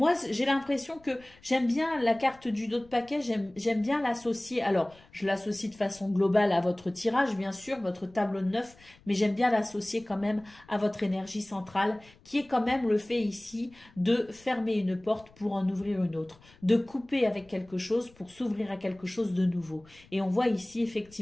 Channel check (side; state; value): left; noise; rumble, 27 dB below the sound